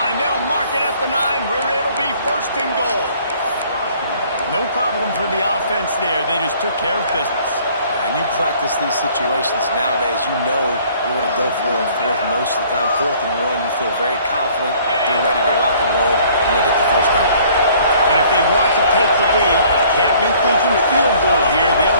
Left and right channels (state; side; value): inverted; both; correlation -0.57